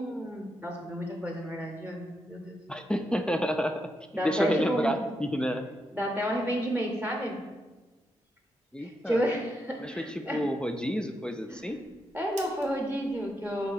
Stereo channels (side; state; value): both; normal; correlation 0.82